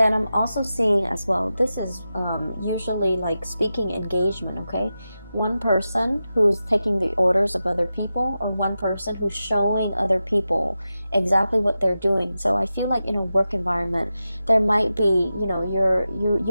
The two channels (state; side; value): inverted; both; correlation -0.92